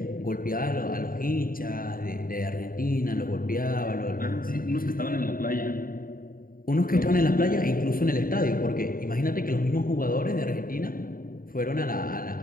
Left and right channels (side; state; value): right; late; 0.41 ms